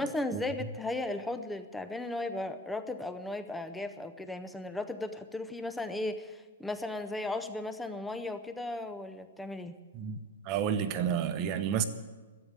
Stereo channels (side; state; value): both; normal; correlation 0.42